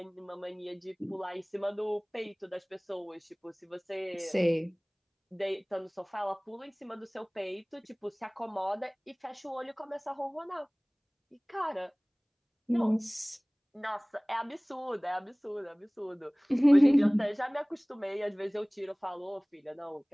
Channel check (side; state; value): both; identical; correlation 1.00